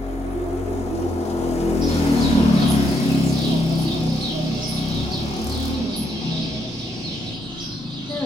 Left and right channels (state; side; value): normal; both; correlation 0.76